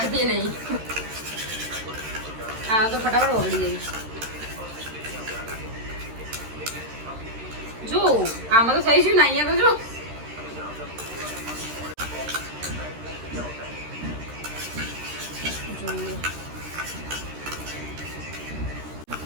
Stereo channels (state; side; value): late; left; 13 ms